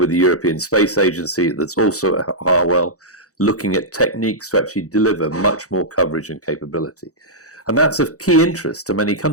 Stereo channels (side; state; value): right; late; 0.66 ms